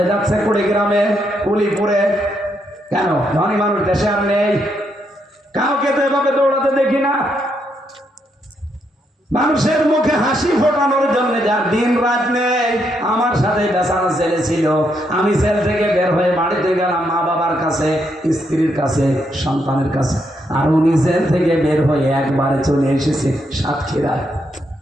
যাচ্ছে কুড়িগ্রামে, কুলিপুরে। কেন? ধনী মানুষ দেশে আর নেই, কাউকে তো এভাবে দৌড়াতে দেখি না। মানুষের মুখে হাসি ফোটানোর জন্য যার দিন রাত নেই। আমার সাথে বেচারা ছেলে ছিল, আমি জেল থেকে বের হয়ে বাড়িতে গেলাম মা বাবার কাছে, স্ত্রীর কাছে, সন্তানের কাছে, আর উনি জেল থেকে বের হয়ে একবারে চলে এসেছে সাতক্ষীরায়।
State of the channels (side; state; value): both; normal; correlation 0.78